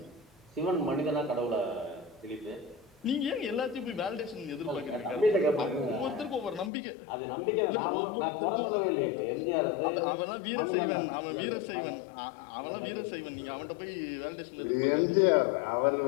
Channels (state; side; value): drops out; right; at 6.7 s